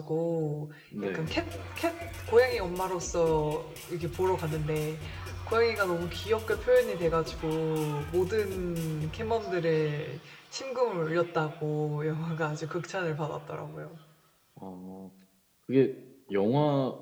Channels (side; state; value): both; identical; correlation 1.00